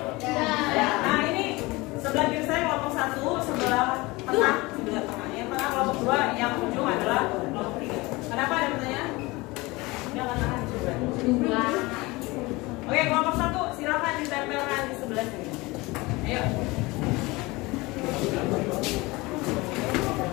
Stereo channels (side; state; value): right; quieter; 22.6 dB